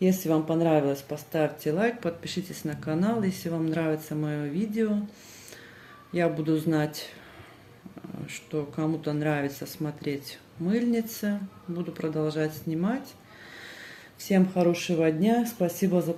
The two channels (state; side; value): identical; both; correlation 1.00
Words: Если вам понравилось, поставьте лайк, подпишитесь на канал. Если вам нравится мое видео, я буду знать, что кому-то нравится смотреть мыльницы. Буду продолжать снимать. Всем хорошего дня. Спасибо за